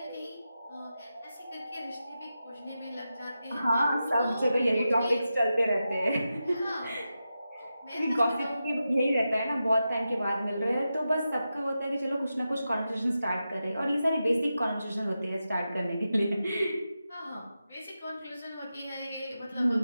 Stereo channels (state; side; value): inverted; both; correlation -0.90